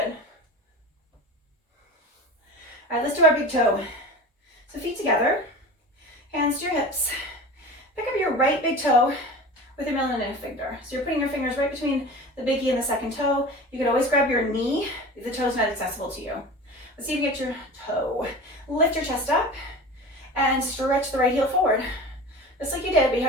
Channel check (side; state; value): both; normal; correlation 0.34